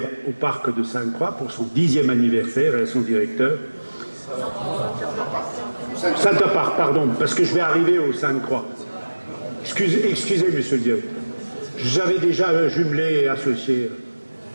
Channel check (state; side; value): inverted; both; correlation -1.00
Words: au parc de Sainte-Croix pour son 10e anniversaire et à son directeur. Center Park, pardon, parce que je vais arriver au Sainte-Croix. Excusez, monsieur le directeur. J'avais déjà jumelé et associé.